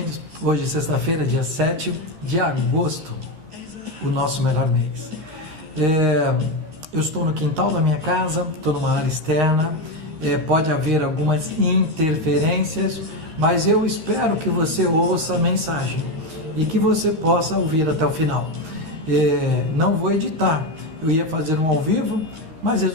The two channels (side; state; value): left; late; 13 ms